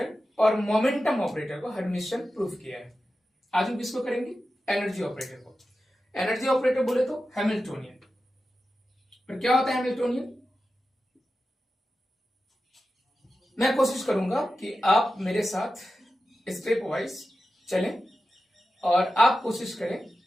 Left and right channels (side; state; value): both; normal; correlation 0.92